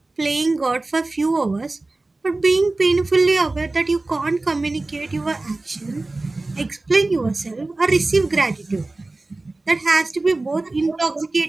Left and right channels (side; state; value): left; quieter; 3.1 dB